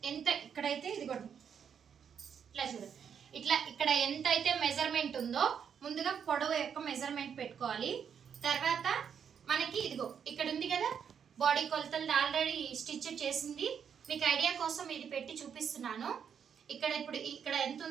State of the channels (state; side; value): quieter; left; 7.6 dB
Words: ఎంత ఇక్కడైతే ఇదిగోండి ఇట్లా చూడండి, ఇట్లా ఇక్కడ ఎంత అయితే మెజర్మెంట్ ఉందో ముందుగా పొడవు యొక్క మెజర్మెంట్ పెట్టుకోవాలి. తర్వాత మనకి ఇదిగో ఇక్కడ ఉంది కదా బాడీ కొలతలు ఆల్రెడీ స్టిచ్ చేసింది. మీకు ఐడియా కోసం ఇది పెట్టి చూపిస్తున్నాను. ఇప్పుడు ఇక్కడ ఎంత